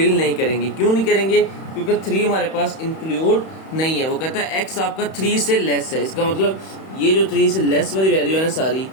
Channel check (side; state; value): right; late; 31 ms